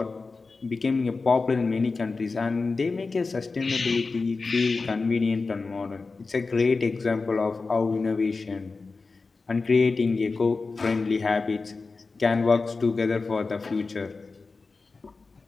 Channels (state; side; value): quieter; right; 4.0 dB